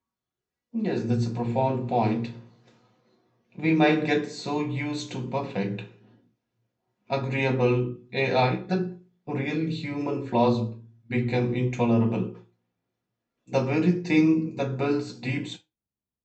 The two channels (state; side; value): identical; both; correlation 1.00